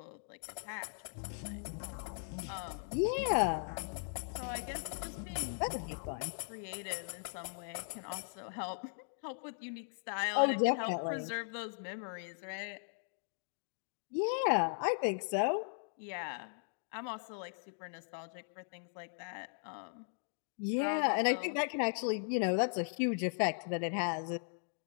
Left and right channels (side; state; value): right; silent; digital silence